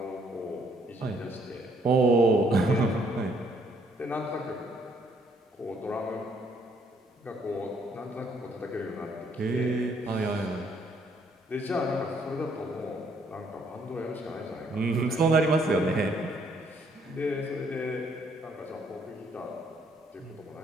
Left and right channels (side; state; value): both; normal; correlation 0.67